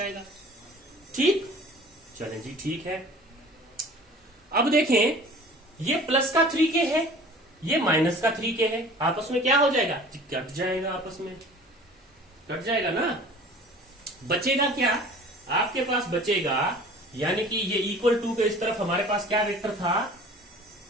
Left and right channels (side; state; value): both; normal; correlation 0.45